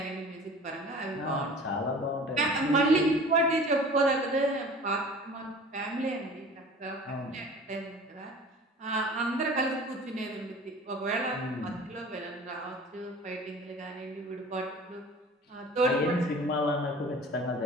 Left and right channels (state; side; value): normal; both; correlation 0.43